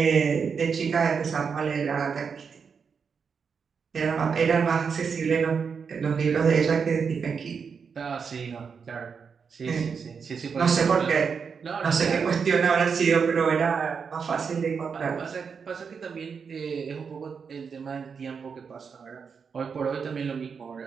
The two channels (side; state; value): left; quieter; 6.0 dB